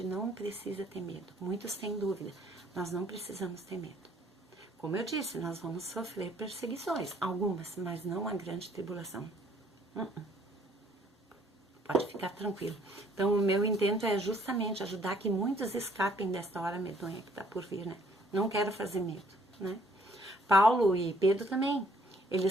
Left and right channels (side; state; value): both; normal; correlation 0.62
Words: não precisa ter medo. Muitos têm dúvida, nós não precisamos ter medo. Como eu disse, nós vamos sofrer perseguições, algumas, mas não a grande tribulação. Pode ficar tranquilo. Então, o meu intento é justamente ajudar que muitos escapem desta hora medonha que está por vir, né? Não quero fazer medo, né? Paulo e Pedro também,